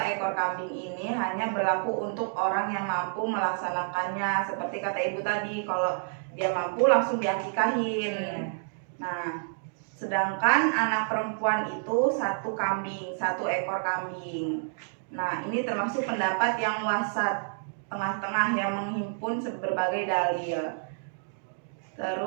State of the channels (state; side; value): silent; left; digital silence